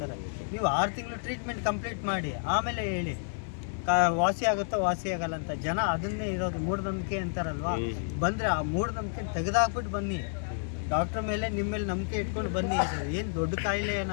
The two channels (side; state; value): right; silent; digital silence